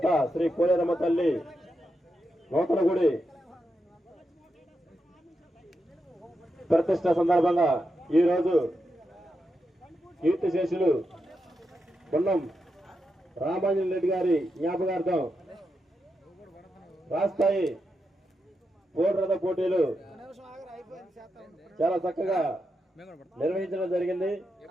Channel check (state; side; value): normal; both; correlation 0.86